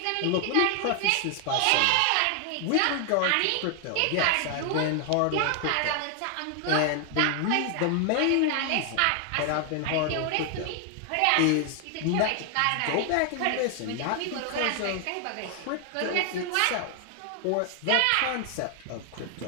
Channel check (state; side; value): different; both; correlation 0.00